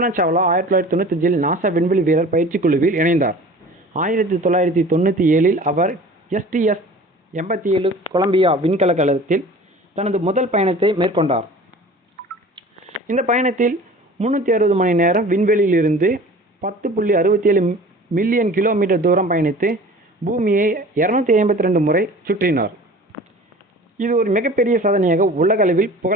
சாவ்லா 1995 நாசா விண்வெளி வீரர் பயிற்சி குழுவில் இணைந்தார். 1997 அவர் STS-87 கொலம்பியா விண்கலத்தில் தனது முதல் பயணத்தை மேற்கொண்டார். இந்த பயணத்தில் 360 மணி நேரம் விண்வெளியில் இருந்து 10.67 மில்லியன் கிலோமீட்டர் தூரம் பயணித்து பூமியை 252 முறை சுற்றினார். இது ஒரு மிகப்பெரிய சாதனையாக உலக அளவில்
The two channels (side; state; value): both; normal; correlation 0.43